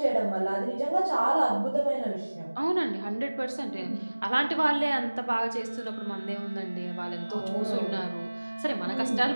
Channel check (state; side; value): inverted; both; correlation -1.00